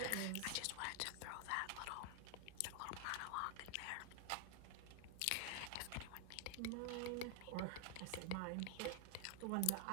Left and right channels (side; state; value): both; different; correlation 0.00